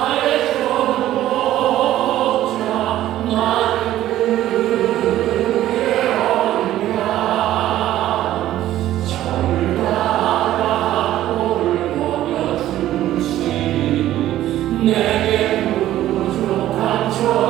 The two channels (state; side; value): quieter; left; 13.5 dB